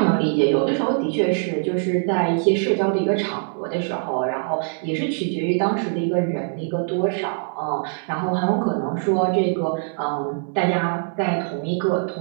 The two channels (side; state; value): left; silent; digital silence